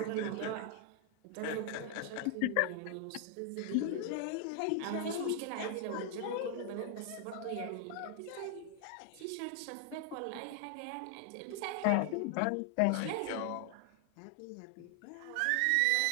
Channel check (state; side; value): different; both; correlation 0.00